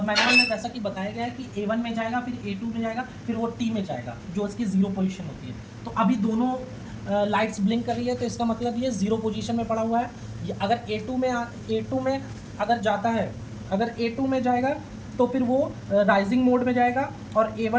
में जैसा कि बताया गया है कि A1 में जाएगा, फिर A2 में जाएगा, फिर वो T में जाएगा, जो इसकी 0 पोजीशन होती है। तो अभी दोनों लाइट्स ब्लिंक कर रही है, तो इसका मतलब ये 0 पोजीशन में पड़ा हुआ है। अगर A2 में अगर जाता है, अगर A2 में जाएगा तो फिर वो राइजिंग मोड में जाएगा और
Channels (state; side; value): identical; both; correlation 1.00